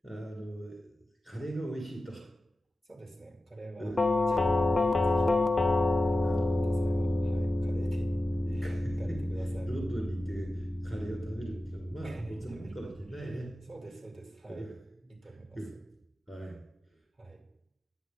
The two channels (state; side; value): normal; both; correlation 0.94